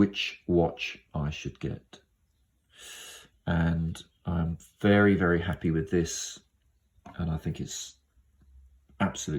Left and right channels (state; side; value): identical; both; correlation 1.00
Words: watch I should get. And I'm very, very happy with this. And I think it's